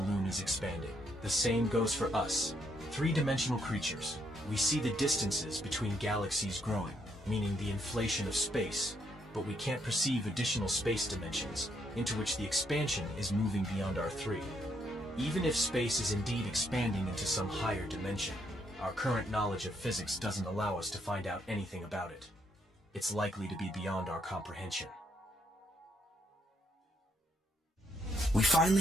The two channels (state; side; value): normal; both; correlation 0.74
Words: is expanding. The same goes for us, three-dimensional creatures. We see the distances between galaxies growing, meaning the inflation of space, but we can't perceive additional space dimensions into which the expansion is moving beyond our three. Even if space is indeed expanding into some higher dimension, our current knowledge of physics doesn't allow us to find out anything about it. It's likely to be beyond our comprehension. We